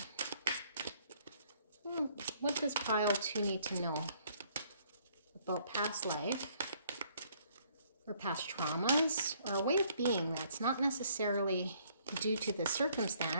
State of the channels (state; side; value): inverted; both; correlation -0.65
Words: What does pile 2 need to know about past life or past traumas or a way of being that's not necessarily due to the